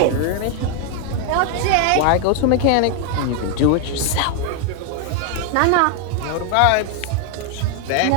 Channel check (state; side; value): different; both; correlation 0.00